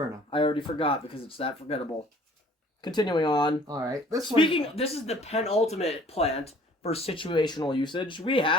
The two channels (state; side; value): normal; both; correlation 0.53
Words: I already forgot because it's that forgettable. Continuing on. Alright, this This is the penultimate plant for situational usage. We